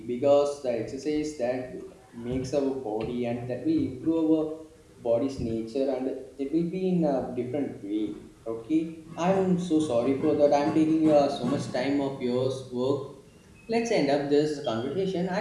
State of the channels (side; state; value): both; identical; correlation 1.00